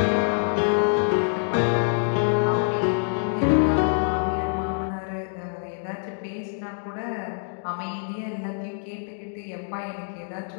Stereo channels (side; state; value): right; silent; digital silence